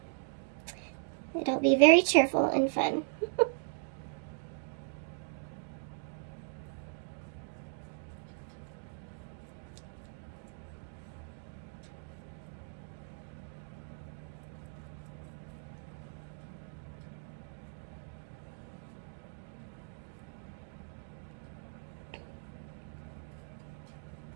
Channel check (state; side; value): silent; left; digital silence